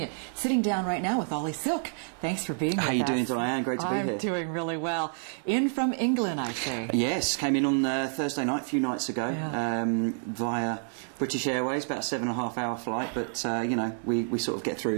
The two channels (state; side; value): silent; left; 59 dB below the other